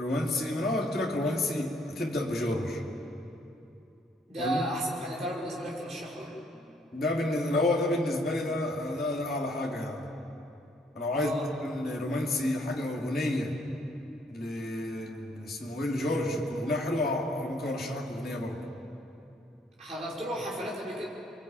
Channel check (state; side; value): normal; both; correlation 0.67